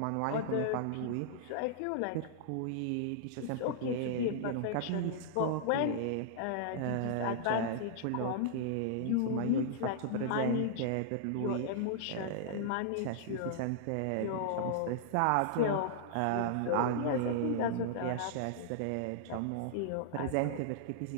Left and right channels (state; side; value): different; both; correlation -0.01